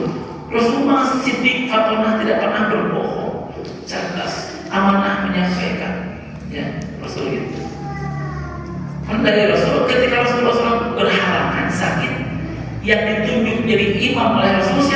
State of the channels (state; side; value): identical; both; correlation 1.00